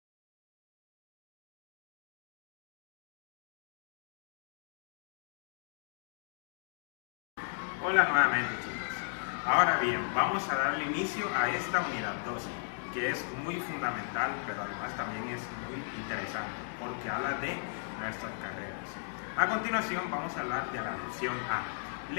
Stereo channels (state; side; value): silent; right; digital silence